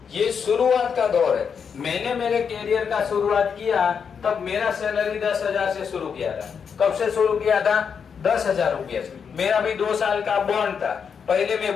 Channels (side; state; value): right; quieter; 6.6 dB